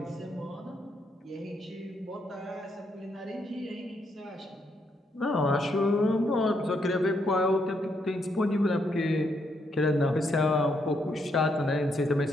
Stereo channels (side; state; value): both; normal; correlation 0.76